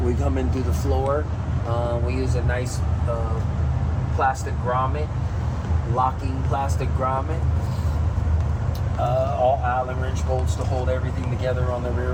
We come in through the floor. We use a nice plastic grommet, locking plastic grommet. All Allen wrench bolts to hold everything together on the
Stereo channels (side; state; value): both; identical; correlation 1.00